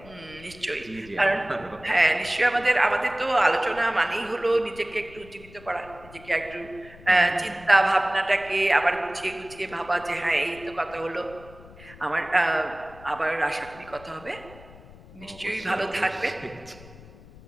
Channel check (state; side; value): noise; left; rumble, 21 dB below the sound